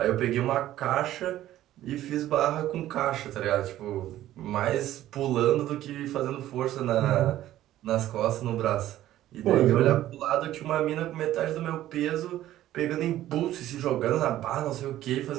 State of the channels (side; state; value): left; quieter; 13.6 dB